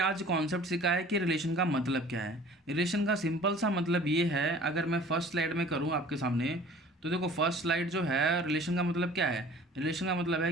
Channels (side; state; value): both; normal; correlation 0.47